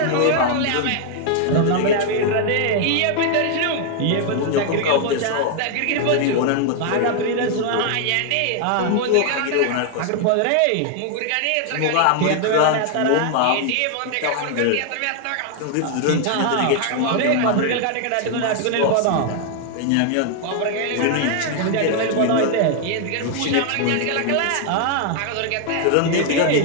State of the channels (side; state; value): both; different; correlation 0.00